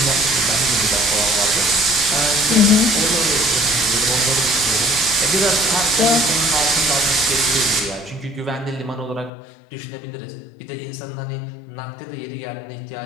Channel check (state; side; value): drops out; right; at 9.3 s